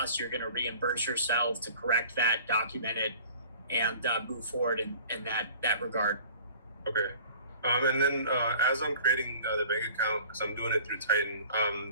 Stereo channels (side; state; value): both; inverted; correlation -0.47